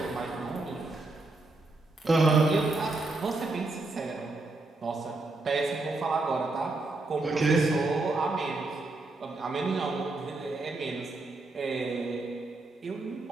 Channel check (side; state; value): left; quieter; 3.2 dB